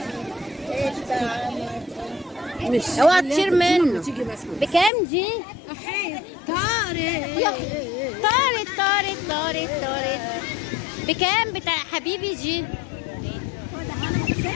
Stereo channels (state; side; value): drops out; right; at 4.9 s